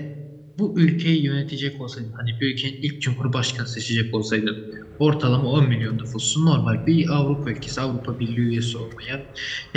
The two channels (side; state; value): both; identical; correlation 1.00